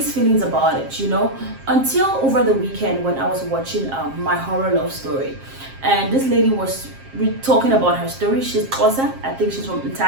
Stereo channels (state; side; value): late; left; 7.5 ms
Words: feelings about it, you know, until over the weekend when I was watching My Horror Love Story. And this lady was talking about her story. She's Xhosa, I think she's from